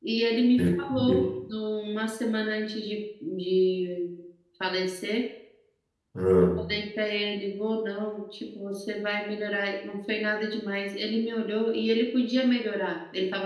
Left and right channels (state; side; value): identical; both; correlation 1.00